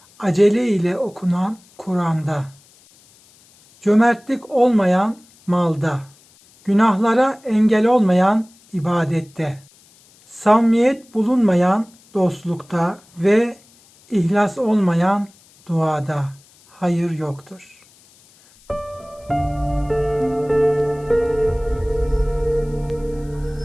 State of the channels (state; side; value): noise; left; hiss, 29 dB below the sound